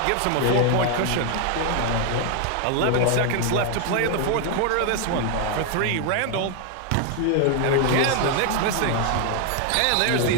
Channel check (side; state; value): both; different; correlation 0.00